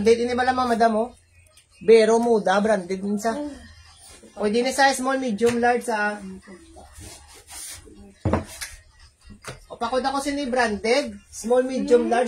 Ini ba lang mga madam oh? Bero muda. Branded din sa. Pwede na sa small, medium, large sa. O pakod ako si branded. Small, medium,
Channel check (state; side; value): identical; both; correlation 1.00